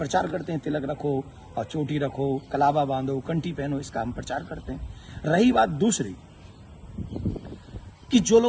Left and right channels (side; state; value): both; identical; correlation 1.00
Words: करते हैं, तिलक रखो और चोटी रखो, कलावा बांधो, कंठी पहनो, इसका हम प्रचार करते हैं। रही बात दूसरी कि जो